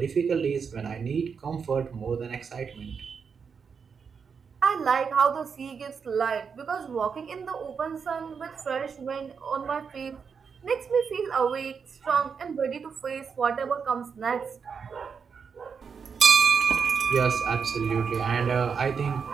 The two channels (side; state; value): left; quieter; 6.1 dB